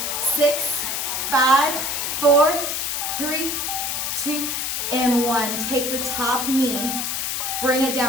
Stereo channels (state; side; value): noise; left; hiss, 1 dB below the sound